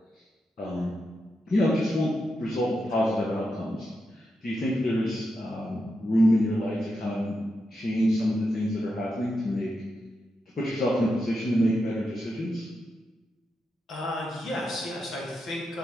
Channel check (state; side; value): normal; both; correlation 0.86